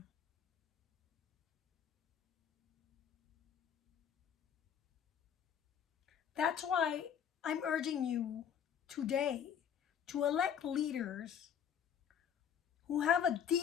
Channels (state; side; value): quieter; right; 8.3 dB